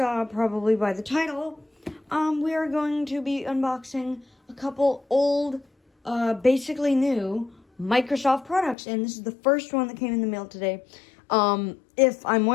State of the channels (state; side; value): drops out; right; at 8.8 s